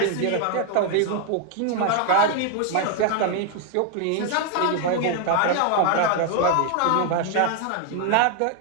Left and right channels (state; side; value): different; both; correlation 0.00